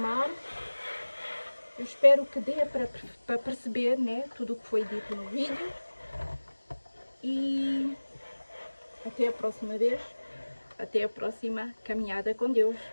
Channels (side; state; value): both; inverted; correlation -1.00